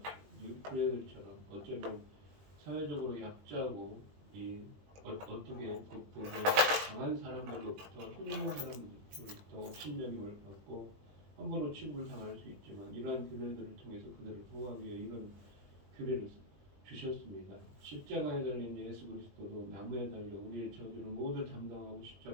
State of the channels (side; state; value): left; late; 20 ms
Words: 규례들처럼 어쩌면 사회적으로 약자고 어떻게 극복을 강한 사람들로부터 힘 있는 사람들로부터 업신여김을 받고 함부로 취급을 당할 수 있지만, 이러한 규례들을 통해서 그들을 보호하기 위해 이런 규례를 주셨습니다. 십자가에 달린 예수 그리스도도 나무에 달려 우리의 저주를 모두 담당하고